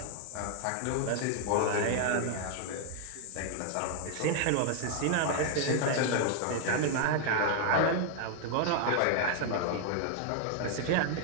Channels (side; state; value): both; different; correlation 0.00